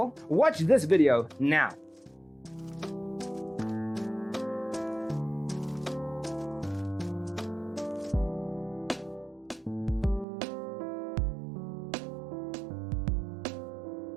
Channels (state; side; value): drops out; left; at 10.2 s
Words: Watch this video now.